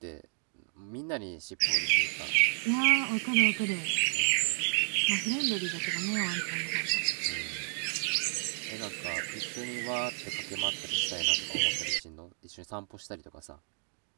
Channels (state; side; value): silent; left; 57 dB below the other